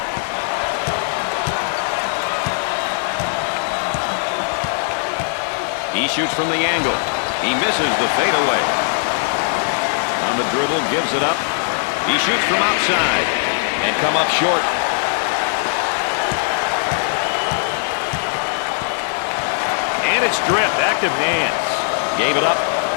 He shoots from the angle. He misses the fadeaway. On the dribble, gives it up. He shoots from outside and come up short. And it's stripped. Active hands. Gave it up.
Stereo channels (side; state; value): right; silent; digital silence